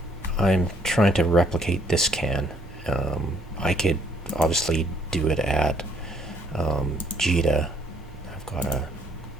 I'm trying to replicate this can. I could obviously do it at Jita. I've got a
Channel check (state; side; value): normal; both; correlation 0.66